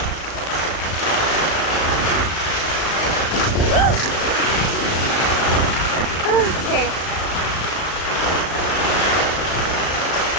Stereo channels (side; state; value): right; late; 35 ms